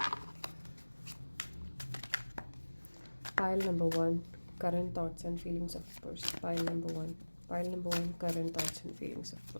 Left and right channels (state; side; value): inverted; both; correlation -1.00